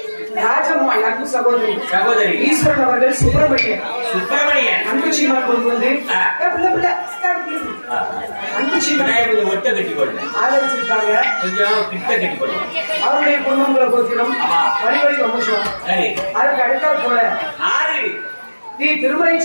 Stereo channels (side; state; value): both; inverted; correlation -1.00